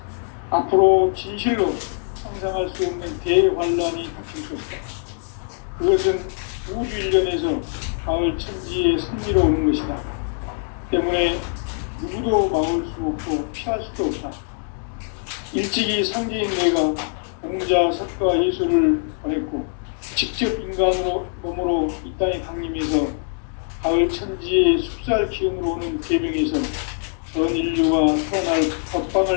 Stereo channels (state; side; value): silent; right; 64 dB below the other